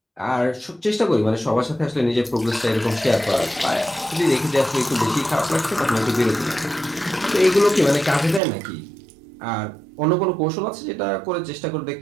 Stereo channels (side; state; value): left; drops out; at 8.4 s